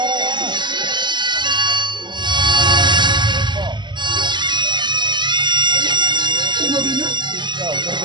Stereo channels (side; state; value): left; late; 0.22 ms